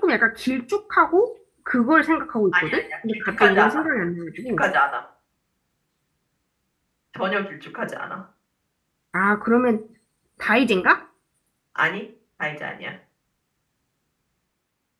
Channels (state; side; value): identical; both; correlation 1.00